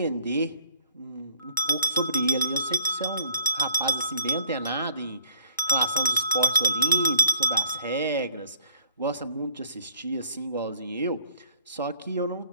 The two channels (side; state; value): both; inverted; correlation -0.64